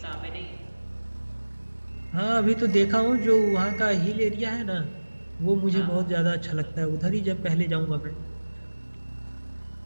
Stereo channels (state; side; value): inverted; both; correlation -1.00